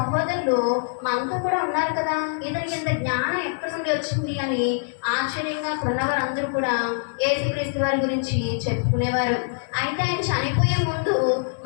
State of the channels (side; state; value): right; silent; digital silence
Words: మనతో కూడా ఉన్నారు కదా, ఇతనికి ఇంత జ్ఞానం ఎక్కడి నుండి వచ్చింది అని ఆశ్చర్యంగా ఉన్నవారు అందరూ కూడా యేసుక్రీస్తు వారి గురించి చెప్పుకునేవారు. అయితే ఆయన చనిపోయే ముందు